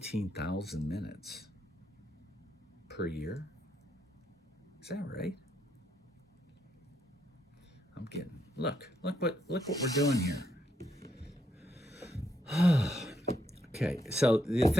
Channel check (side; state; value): both; normal; correlation 0.77